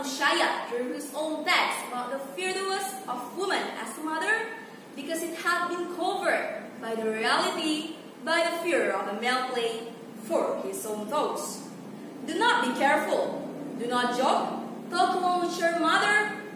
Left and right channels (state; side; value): identical; both; correlation 1.00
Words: drew his own text about the fearlessness of woman as a mother because it had been covered by the reality, by the fear of a male play for his own thoughts. Do not be careful. Do not joke. Talk along with your mother,